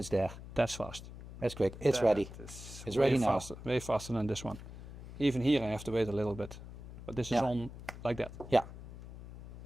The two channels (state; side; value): noise; left; hum, 13 dB below the sound